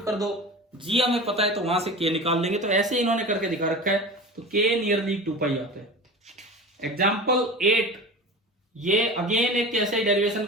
कर दो, जी हमें पता है तो वहां से के निकाल लेंगे। तो ऐसे इन्होंने करके दिखा रखा है, तो के नियरली 2 पाई आता है। एग्जाम्पल 8, ये अगेन एक कैसे डेरिवेशन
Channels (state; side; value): normal; both; correlation 0.33